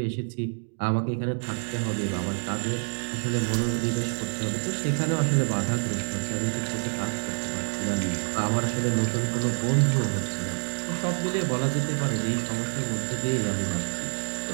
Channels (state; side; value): silent; left; digital silence